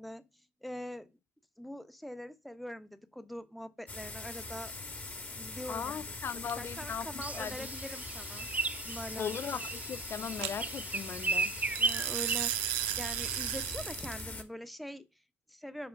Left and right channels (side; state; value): both; normal; correlation 0.35